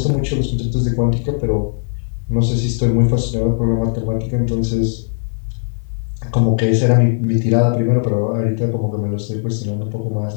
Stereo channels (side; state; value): right; silent; 66 dB below the other